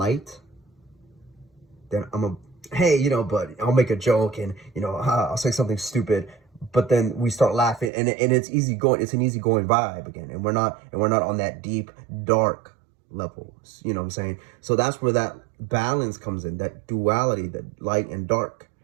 then hey, but I'll make a joke and, I'll say something stupid, but then we start laughing and it's easy going. It's an easygoing vibe again. And we're not on that deep, dark level. You know what I'm saying? So that's where that balance comes in, that duality, that light and dark.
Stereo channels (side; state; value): left; drops out; at 7.9 s